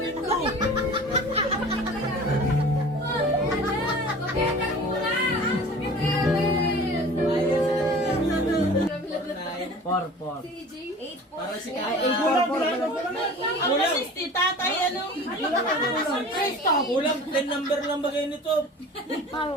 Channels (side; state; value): both; normal; correlation 0.41